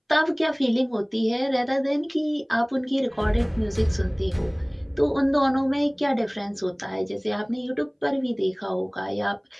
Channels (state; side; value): identical; both; correlation 1.00